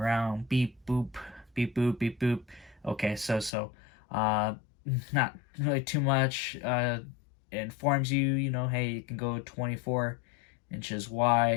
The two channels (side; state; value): right; drops out; at 3.5 s